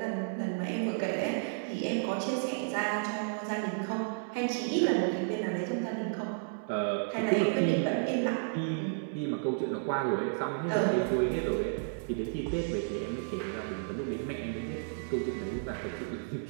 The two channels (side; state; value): left; silent; digital silence